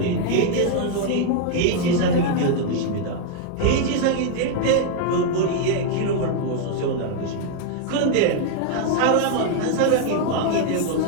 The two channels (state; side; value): different; both; correlation 0.00